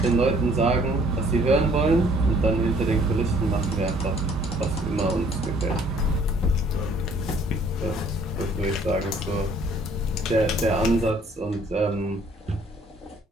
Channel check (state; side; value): normal; both; correlation 0.59